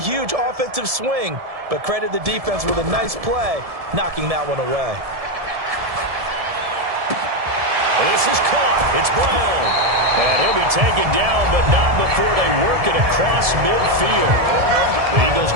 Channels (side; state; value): left; late; 1.7 ms